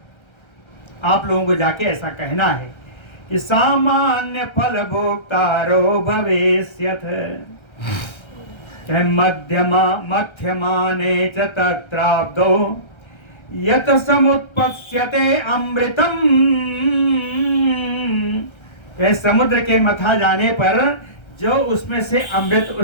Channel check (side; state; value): right; late; 1.3 ms